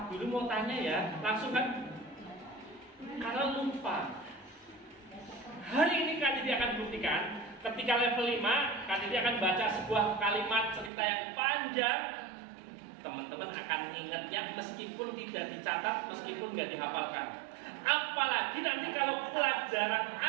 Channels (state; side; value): drops out; left; at 10.9 s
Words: Guru mau tanya ya, langsung kan, karena lupa. Hari ini Kak Didi akan buktikan, ketika level 5, Kak Didi akan baca sebuah kalimat cerita yang panjang. Teman-teman akan ngingetnya meskipun tidak dicatat, meskipun nggak dihafalkan. Apalagi nanti kalau pelajaran